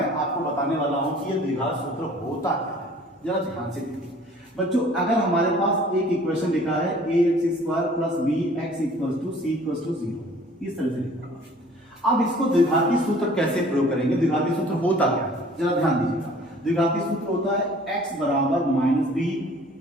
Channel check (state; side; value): normal; both; correlation 0.52